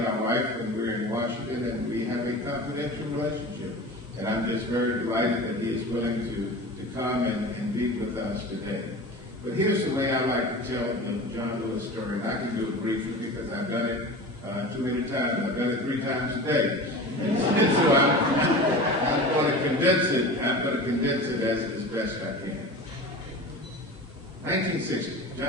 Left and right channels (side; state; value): both; normal; correlation 0.33